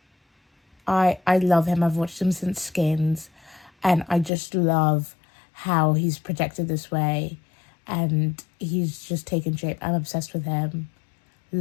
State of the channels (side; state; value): right; drops out; at 4.3 s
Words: I love him. I've watched him since Skins, and I just love how he's projected this way, and he's just taken shape. I'm obsessed with him.